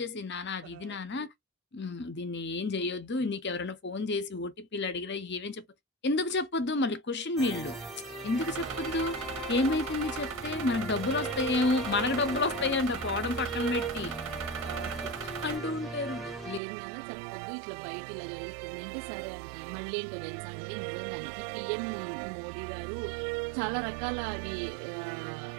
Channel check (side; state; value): left; drops out; at 16.6 s